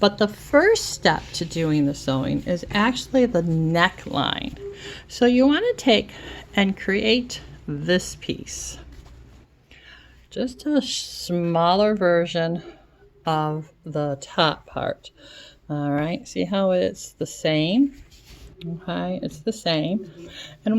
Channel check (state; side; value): identical; both; correlation 1.00